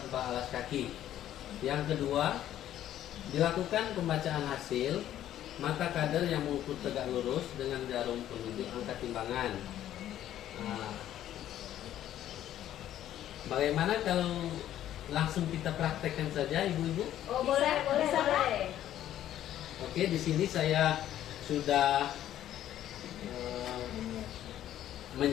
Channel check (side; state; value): right; quieter; 12.0 dB